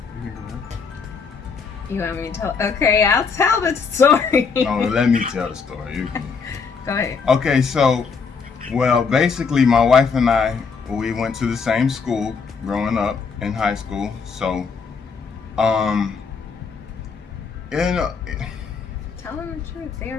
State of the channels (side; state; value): right; quieter; 5.4 dB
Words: You want me to tell? Okay, I'll tell the story. No, let me tell the story. You can. Go ahead. Okay, so, well, basically, my wife and I, we went to the same school growing up in high school. So, Tell them the truth. They